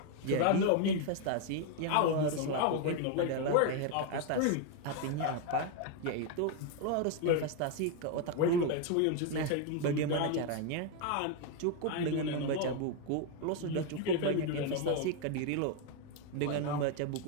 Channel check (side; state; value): both; different; correlation 0.01